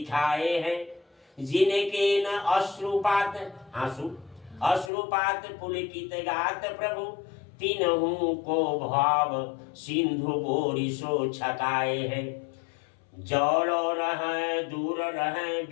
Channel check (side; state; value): right; drops out; at 4.9 s